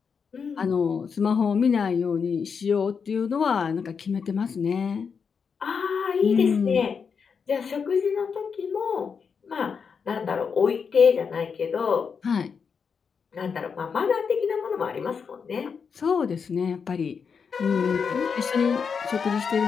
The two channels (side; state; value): right; quieter; 6.1 dB